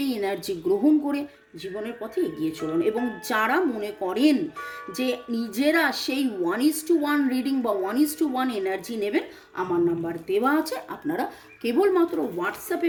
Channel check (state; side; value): identical; both; correlation 1.00